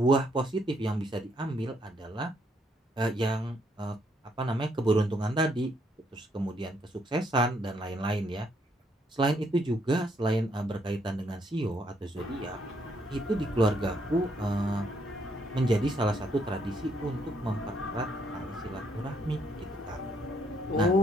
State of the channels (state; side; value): normal; both; correlation 0.72